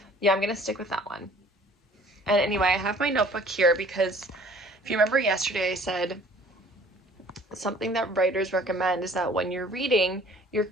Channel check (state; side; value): normal; both; correlation 0.52